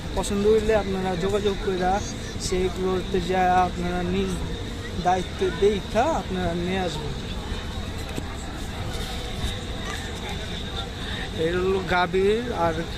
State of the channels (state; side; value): identical; both; correlation 1.00